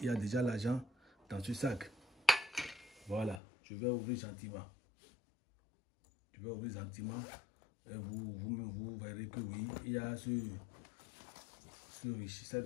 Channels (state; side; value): drops out; right; at 3.4 s